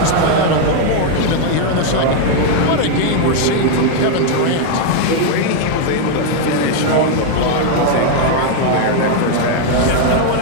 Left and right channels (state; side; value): different; both; correlation 0.00